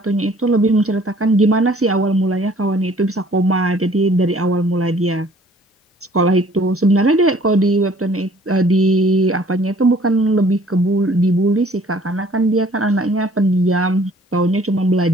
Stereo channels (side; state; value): both; normal; correlation 0.56